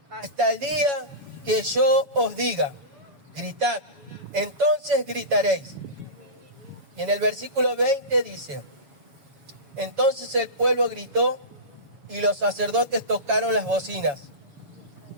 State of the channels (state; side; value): late; left; 7.1 ms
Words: hasta el día que yo os diga, gritad, entonces gritaréis. Y en el versículo 20 dice: entonces el pueblo gritó y los sacerdotes tocaron las bocinas.